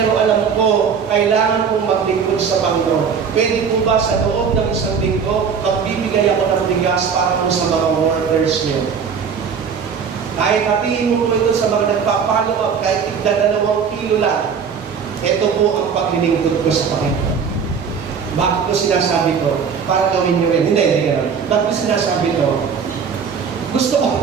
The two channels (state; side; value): quieter; left; 6.5 dB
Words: alam ko, kailangan kong maglingkod sa Panginoon. Pwede po ba sa loob ng isang linggo, magbibigay ako ng bigas para po sa mga workers niyo? Kahit hatiin mo po ito sa mga nagpa-follow up, kahit 2 kilo lang, ito po ang paglilingkod ko sa Panginoon. Bakit ko sinasabi ko? Para gawin niyo rin. Hindi gano'n. Bakit ko sinasabi to? Gusto ko.